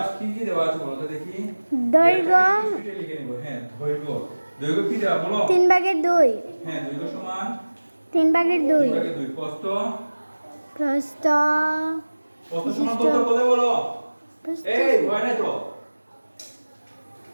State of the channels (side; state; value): both; inverted; correlation -1.00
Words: কি কি দেওয়া আছে বলো তো দেখি। দৈর্ঘ্য লিখে নিব। হ্যাঁ, দৈর্ঘ্য কি দেওয়া বলো? 3/2। হ্যাঁ, দৈর্ঘ্য সমান 3/2। 3/2। প্রস্থ প্রস্থ সমান কত বলে বলো? এই হয় না তো।